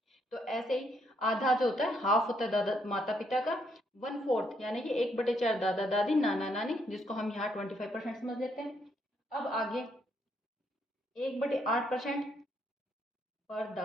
तो ऐसे ही आधा जो होता है, हाफ होता है दादा माता पिता का, 1/4 यानी कि 1/4 दादा दादी नाना नानी, जिसको हम यहाँ 25% समझ लेते हैं। अब आगे 1/8% पर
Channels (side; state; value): both; normal; correlation 0.73